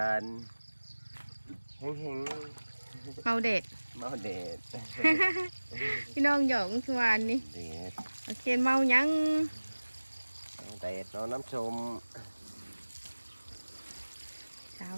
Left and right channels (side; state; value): both; inverted; correlation -1.00